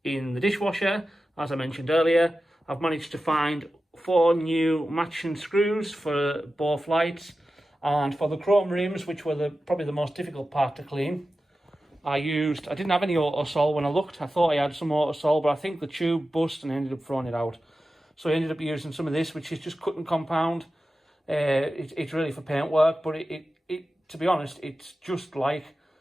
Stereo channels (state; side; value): normal; both; correlation 0.93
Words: in the dishwasher, as I mentioned earlier. I've managed to find 4 new matching screws for both lights, and for the chrome rims, which were probably the most difficult part to clean, I didn't have any Autosol when I looked. I thought I had some Autosol, but I think the tube bust and I ended up throwing it out. So I ended up using some of this, which is just cut and compound. It's really for paint work, but it to be honest, it's just like